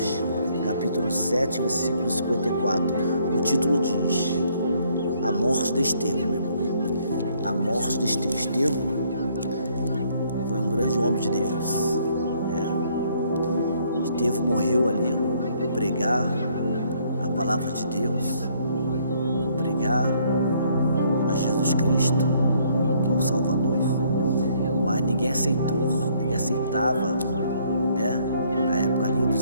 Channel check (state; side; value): inverted; both; correlation -0.66